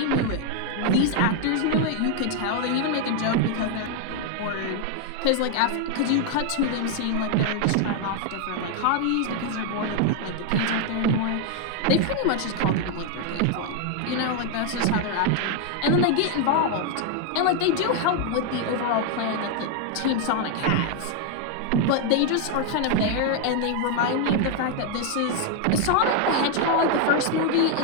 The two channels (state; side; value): different; both; correlation 0.00